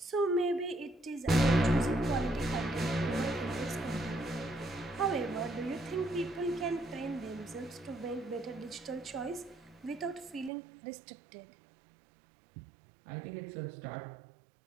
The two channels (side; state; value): left; drops out; at 10.5 s